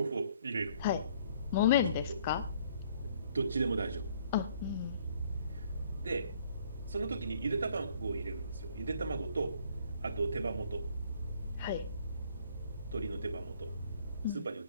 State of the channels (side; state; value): both; inverted; correlation -0.61